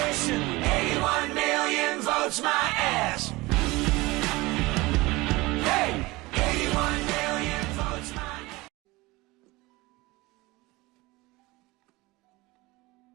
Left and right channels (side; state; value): left; quieter; 21.7 dB